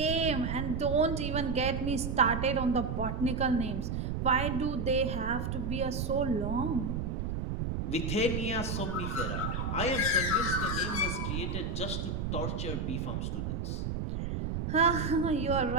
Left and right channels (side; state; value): right; noise; rumble, 2 dB below the sound